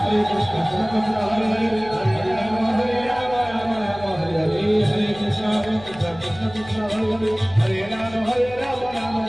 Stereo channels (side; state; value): left; noise; hum, 18 dB below the sound